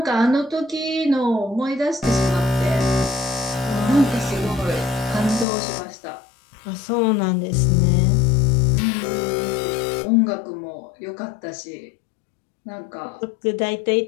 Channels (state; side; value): drops out; right; at 5.5 s